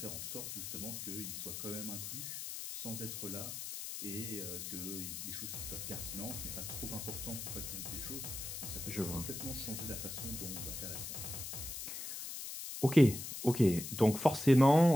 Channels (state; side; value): noise; left; hiss, 7 dB below the sound